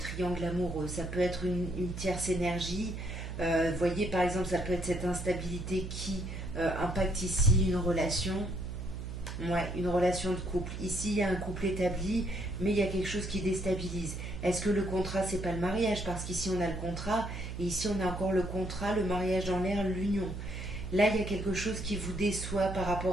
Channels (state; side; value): noise; right; hum, 7 dB below the sound